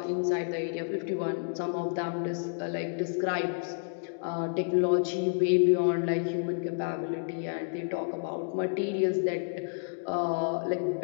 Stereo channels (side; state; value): right; silent; digital silence